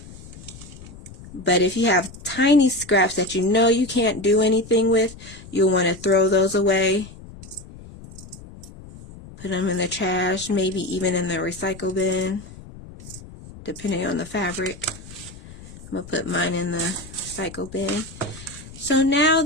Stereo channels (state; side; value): noise; left; rumble, 17 dB below the sound